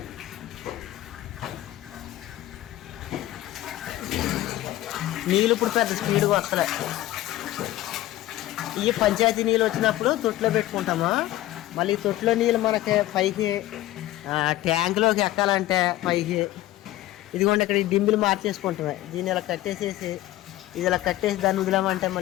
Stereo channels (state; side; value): quieter; right; 15.4 dB